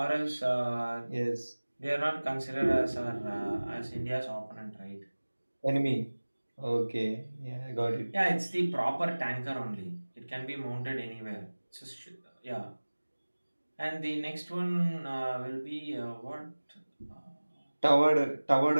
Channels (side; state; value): both; inverted; correlation -1.00